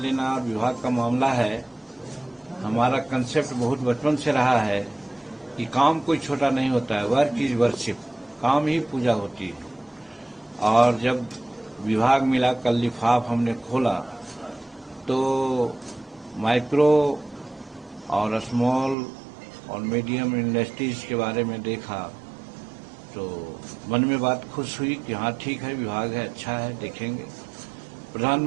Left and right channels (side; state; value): left; drops out; at 18.9 s